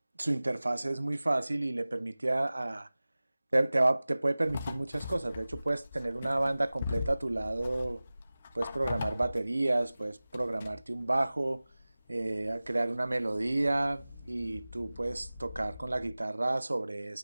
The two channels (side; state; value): both; inverted; correlation -0.98